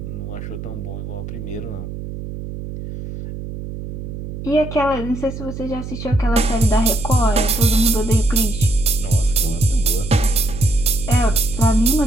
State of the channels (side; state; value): right; noise; hum, 9 dB below the sound